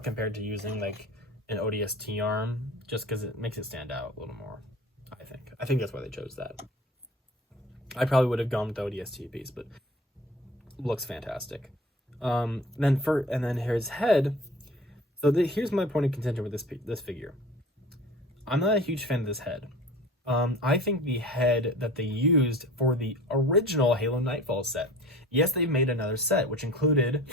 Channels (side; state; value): both; normal; correlation 0.42